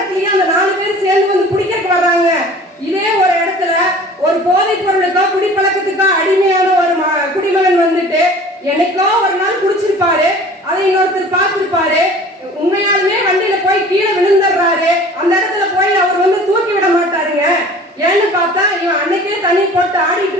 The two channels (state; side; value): normal; both; correlation 0.45